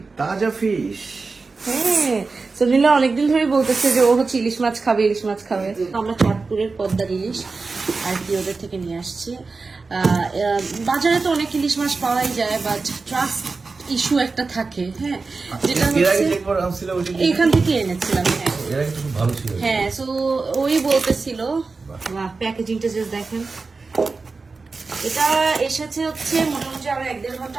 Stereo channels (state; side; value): quieter; left; 4.1 dB